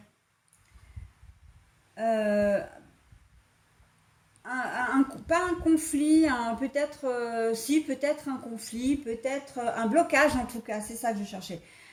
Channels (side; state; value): both; identical; correlation 1.00